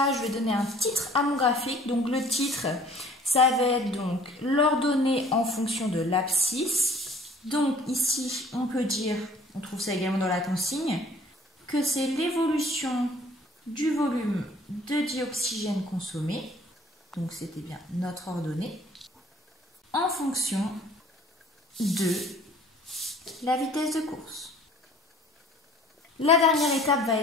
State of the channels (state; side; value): normal; both; correlation 0.53